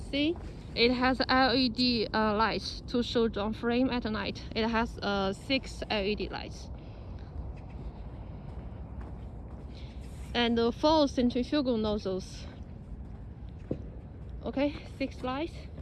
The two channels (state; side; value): identical; both; correlation 1.00